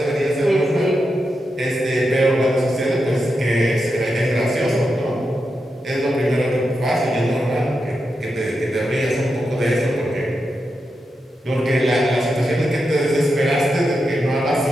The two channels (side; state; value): both; normal; correlation 0.87